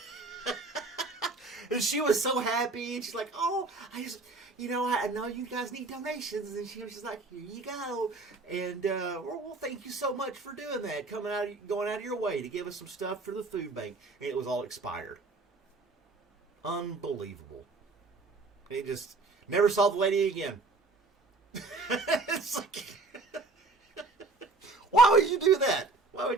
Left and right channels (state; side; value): quieter; left; 3.6 dB